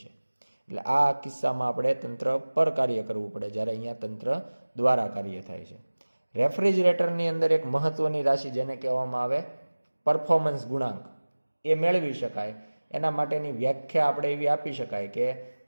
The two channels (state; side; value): inverted; both; correlation -1.00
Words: એટલે આ કિસ્સામાં આપણે તંત્ર પર કાર્ય કરવું પડે, જ્યારે અહીંયા તંત્ર દ્વારા કાર્ય થાય છે. રેફ્રિજરેટરની અંદર એક મહત્વની રાશિ જેને કહેવામાં આવે પરફોર્મન્સ ગુણાંક, એ મેળવી શકાય. એના માટેની વ્યાખ્યા આપણે એવી આપી શકાય કે